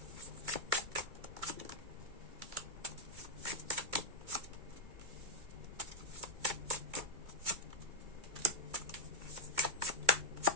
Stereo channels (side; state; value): left; late; 2.2 ms